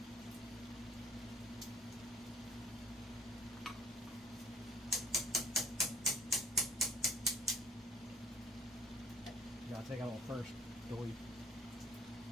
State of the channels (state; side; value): normal; both; correlation 0.54